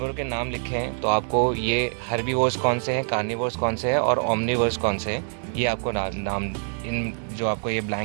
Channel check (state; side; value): silent; left; 62 dB below the other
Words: के नाम लिखे हैं, तो आपको ये हर्बीवोर्स कौन से हैं, कार्निवोर्स कौन से हैं और ओमनिवोर्स कौन से हैं, ये आपको नाम इन जो आपको ये